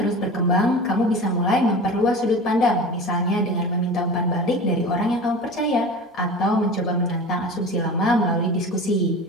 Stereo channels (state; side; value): normal; both; correlation 0.34